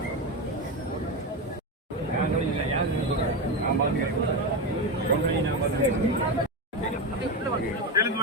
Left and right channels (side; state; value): both; normal; correlation 0.15